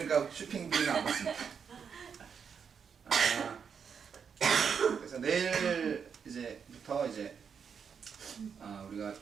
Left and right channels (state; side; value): quieter; left; 6.7 dB